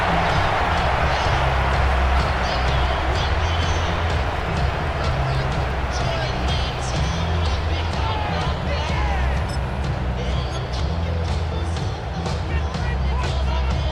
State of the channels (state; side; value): identical; both; correlation 1.00